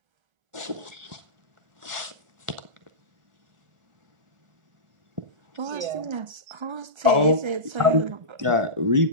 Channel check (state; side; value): late; left; 1.4 ms